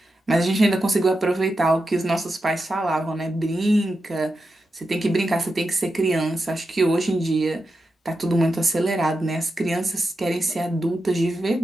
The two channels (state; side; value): normal; both; correlation 0.89